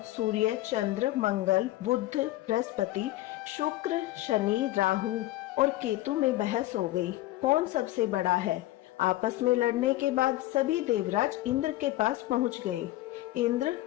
सूर्य, चंद्र, मंगल, बुध, बृहस्पति, शुक्र, शनि, राहु और केतु में बहस हो गई, कौन सबसे बड़ा है। आपस में लड़ने के बाद सभी देवराज इंद्र के पास पहुंच गए। इंद्र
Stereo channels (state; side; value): quieter; right; 16.5 dB